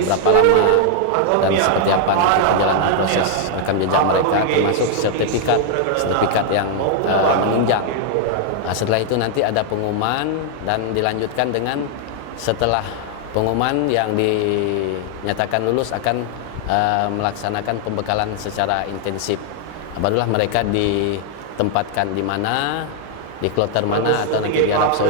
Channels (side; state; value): both; different; correlation 0.00